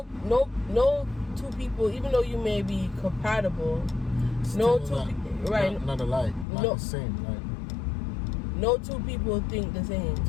two people, even though you may be compatible, Still no two people, right? Not alike, not the same. Like, no two people think the same.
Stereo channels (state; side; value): drops out; right; at 6.5 s